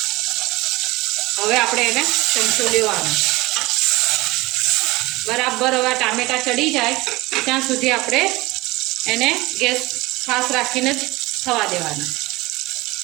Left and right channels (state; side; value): quieter; left; 21.0 dB